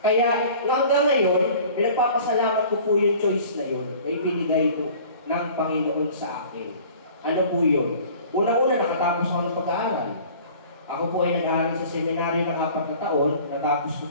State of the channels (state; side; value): inverted; both; correlation -0.47